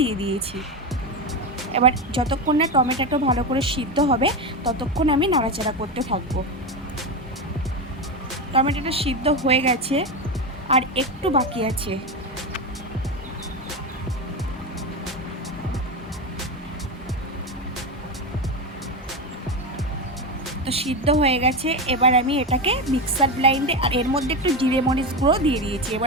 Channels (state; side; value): normal; both; correlation 0.16